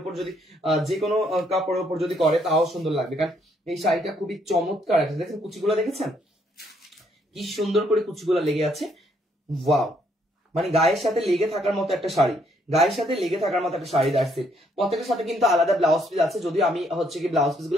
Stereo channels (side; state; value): both; normal; correlation 0.70